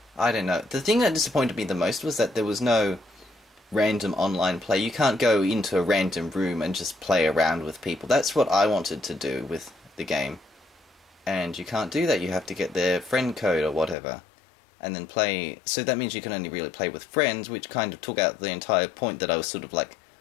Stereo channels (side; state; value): right; drops out; at 14.0 s